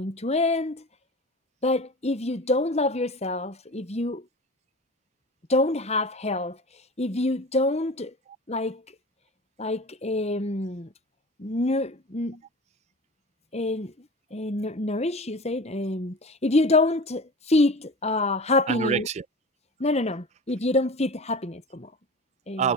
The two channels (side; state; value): both; normal; correlation 0.34